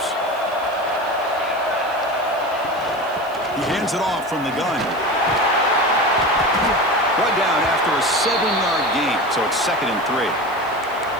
He hands it off from the gun. Brought down after a 7-yard gain, so it's 2nd and 3.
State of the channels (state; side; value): noise; left; hiss, 25 dB below the sound